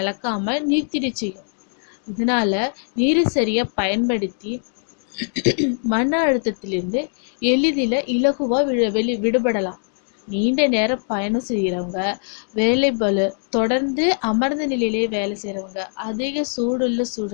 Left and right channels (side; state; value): right; silent; digital silence